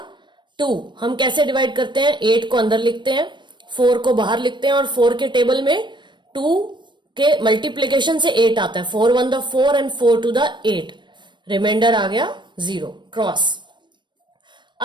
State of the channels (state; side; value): late; left; 0.22 ms